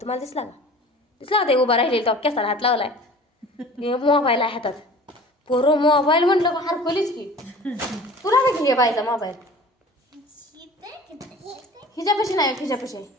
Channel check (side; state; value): both; normal; correlation 0.43